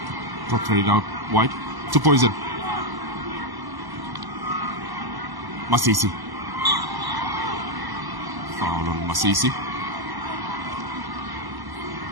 Played out wide to Poison. Masisi. Foul on Masisi.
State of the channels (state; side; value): late; left; 1.0 ms